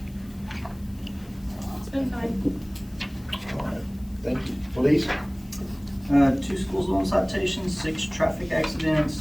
It's been fine. All right, thank you. Police? 2 school zone citations, 6 traffic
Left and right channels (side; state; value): left; noise; hiss, 27 dB below the sound